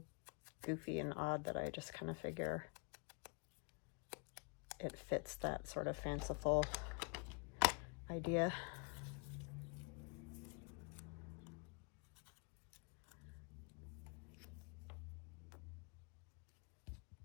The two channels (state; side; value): quieter; right; 34.8 dB